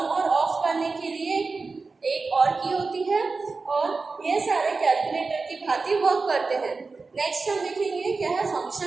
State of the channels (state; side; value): quieter; left; 4.1 dB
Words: और ऑफ करने के लिए एक और की होती है। और ये सारे कैलकुलेटर की भांति वर्क करते हैं। नेक्स्ट हम देखेंगे क्या है